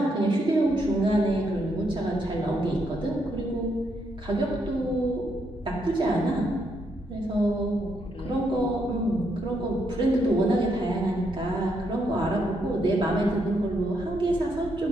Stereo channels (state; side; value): normal; both; correlation 0.77